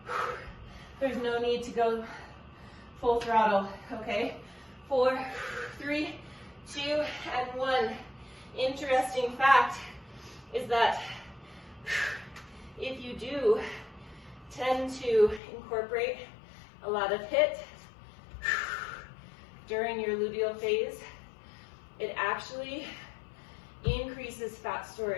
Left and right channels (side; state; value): right; drops out; at 15.4 s